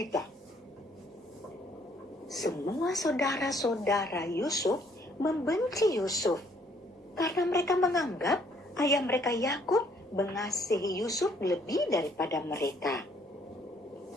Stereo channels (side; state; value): both; normal; correlation 0.65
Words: Semua saudara-saudara Yusuf membenci Yusuf karena mereka menganggap ayah mereka Yakub mengasihi Yusuf lebih daripada mereka.